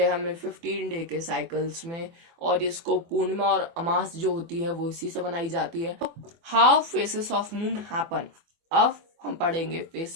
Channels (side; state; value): left; late; 24 ms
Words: हैं हमें 15 डे के साइकिल्स में। और इसको पूर्णिमा और अमास जो होती है वो इसी से बनाई जाती है। How faces of moon happen. अब हम पढ़ेंगे